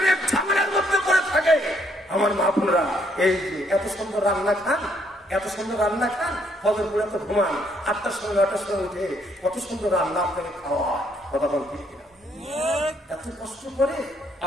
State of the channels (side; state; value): both; normal; correlation 0.70